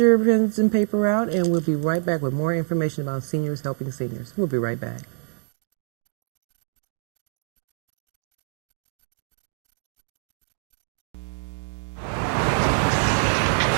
pens and paper out, and we'll be right back with more information about Seniors Helping Seniors. We'll be right back.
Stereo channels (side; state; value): left; silent; 61 dB below the other